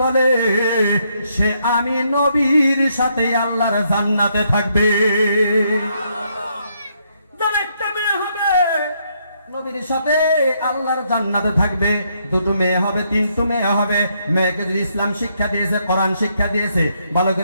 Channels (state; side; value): inverted; both; correlation -0.74